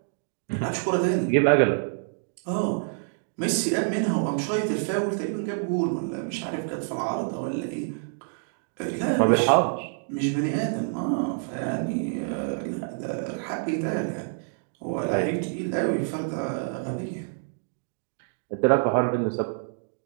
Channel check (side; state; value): left; silent; digital silence